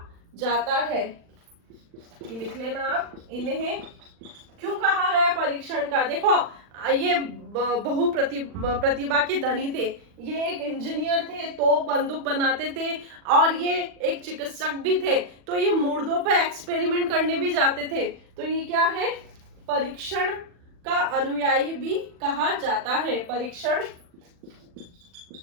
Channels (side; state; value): left; late; 40 ms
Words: जाता है। ये लिख लेना आप, इन्हें क्यों कहा गया परीक्षण का। देखो ये प्रतिभा के धनी थे, ये एक इंजीनियर थे, तोप बंदूक बनाते थे, और ये एक चिकित्सक भी थे। तो ये मुर्दों पर एक्सपेरिमेंट करने भी जाते थे। तो ये क्या है? परीक्षण का अनुयायी भी कहा जाता है। परीक्षण